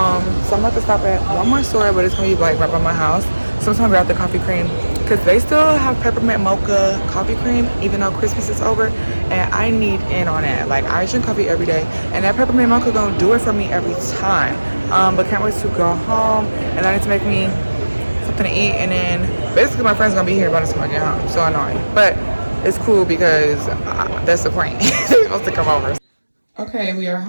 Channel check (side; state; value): both; inverted; correlation -1.00